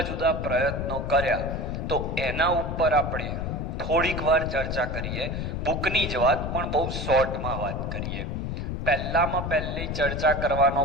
જુદા પ્રયત્નો કર્યા, તો એના ઉપર આપણે થોડીક વાર ચર્ચા કરીએ. બુકની જ વાત, પણ બહુ શોર્ટમાં વાત કરીએ. પહેલી ચર્ચા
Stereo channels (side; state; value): left; noise; rumble, 3 dB below the sound